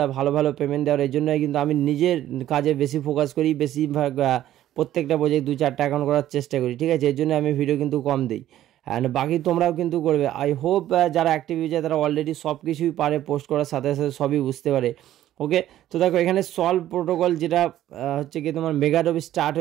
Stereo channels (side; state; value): left; quieter; 12.8 dB